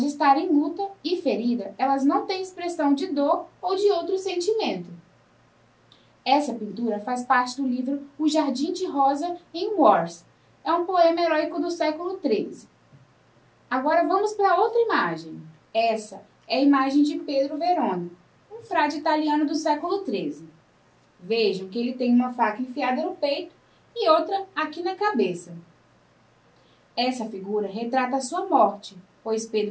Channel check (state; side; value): identical; both; correlation 1.00